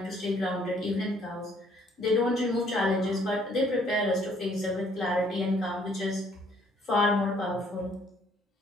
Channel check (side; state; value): both; normal; correlation 0.63